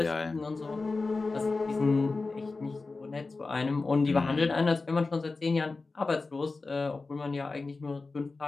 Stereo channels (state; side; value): quieter; right; 3.8 dB